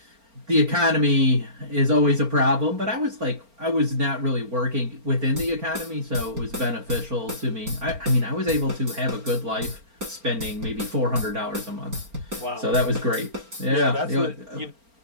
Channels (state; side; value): late; left; 4.4 ms